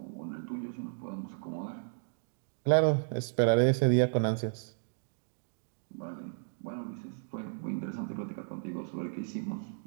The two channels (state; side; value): silent; left; digital silence